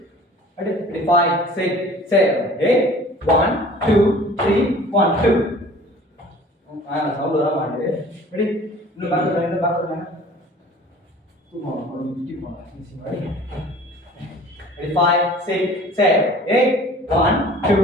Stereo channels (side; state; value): both; normal; correlation 0.47